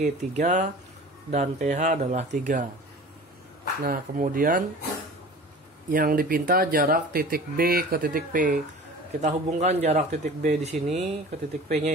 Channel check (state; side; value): normal; both; correlation 0.40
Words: 3 dan PH adalah 3. Nah, kemudian yang dipinta jarak titik B ke titik P. Kita hubungkan jarak titik B di sini ke titik P-nya